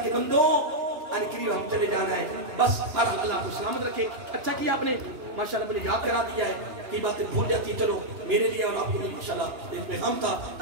کے بندو یعنی قریب ہم چلے جانا ہے بس ہر اللہ کو سلامت رکھے اچھا کیا آپ نے ماشاءاللہ مجھے یاد کرا دیا ہے کئی باتیں بھول جاتی ہیں چلو میرے لیے اور آپ کو بھی ماشاءاللہ ایک پیغام تھا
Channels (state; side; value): late; left; 2.9 ms